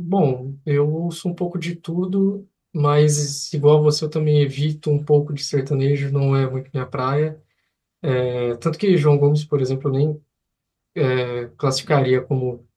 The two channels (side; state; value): both; identical; correlation 1.00